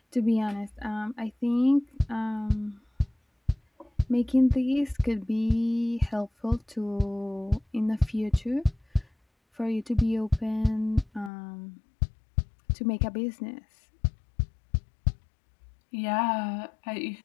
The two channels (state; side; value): drops out; right; at 11.3 s